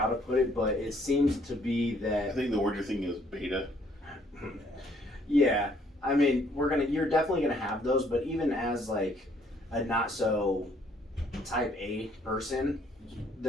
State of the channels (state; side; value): normal; both; correlation 0.64